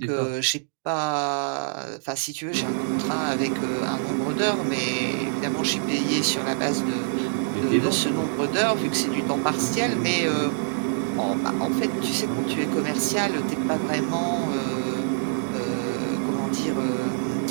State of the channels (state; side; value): silent; left; digital silence